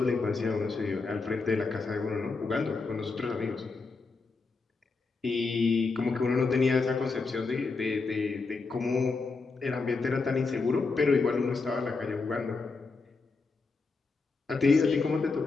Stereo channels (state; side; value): quieter; right; 4.2 dB